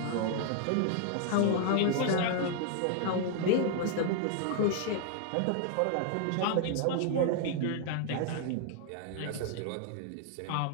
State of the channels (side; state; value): both; different; correlation 0.00